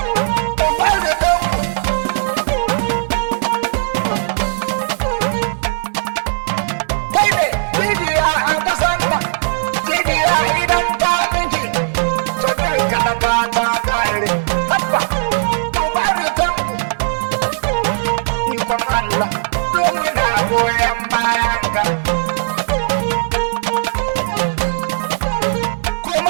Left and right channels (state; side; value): silent; left; 66 dB below the other